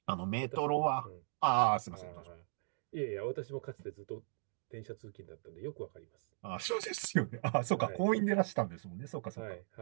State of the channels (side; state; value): left; silent; digital silence